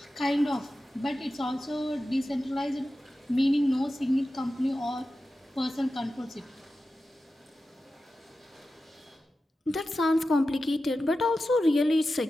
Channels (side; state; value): both; normal; correlation 0.93